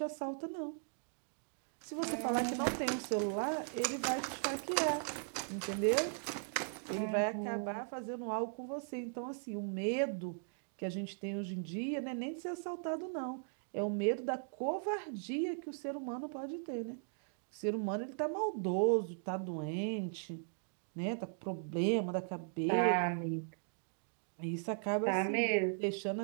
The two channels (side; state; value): left; silent; digital silence